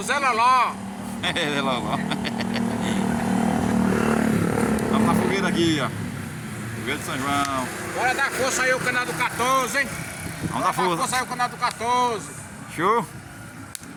Zé Loló. Zé Loló. Vamos na fogueira aqui, ó. Fogueira de São João. Bora dar força aí o canal do 14, hein? Vamos dar força aí o canal do 14. Show!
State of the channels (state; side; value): identical; both; correlation 1.00